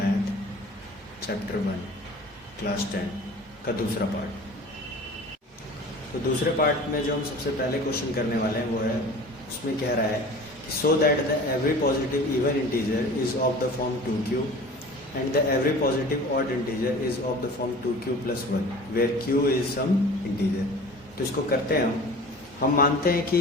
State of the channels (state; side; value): normal; both; correlation 0.41